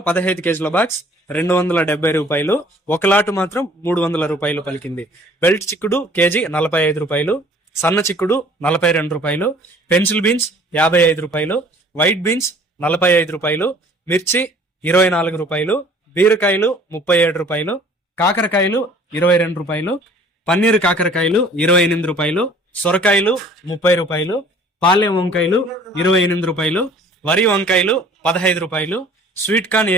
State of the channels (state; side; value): normal; both; correlation 0.53